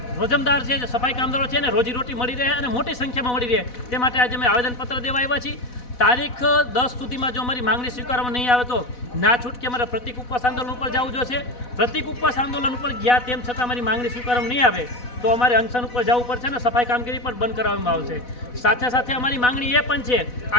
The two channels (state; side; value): late; right; 4.1 ms